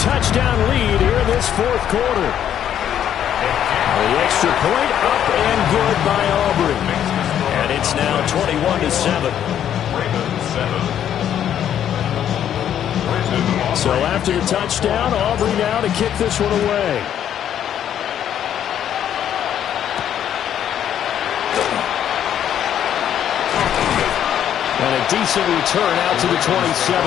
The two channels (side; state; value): right; quieter; 10.0 dB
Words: lead here in this fourth quarter. The extra point up and good by Aubrey. And it's now 21-7. So after the touchdown, Aubrey now to kick this one away. And a decent return out to the